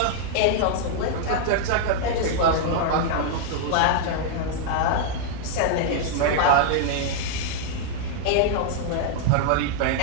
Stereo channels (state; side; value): different; both; correlation -0.01